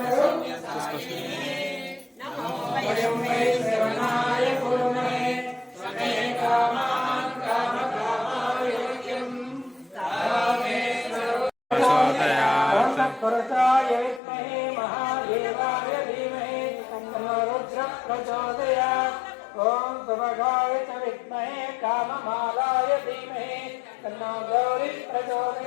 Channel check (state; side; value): drops out; right; at 14.2 s